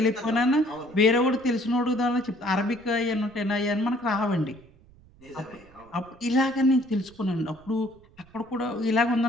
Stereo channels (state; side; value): noise; right; rumble, 27 dB below the sound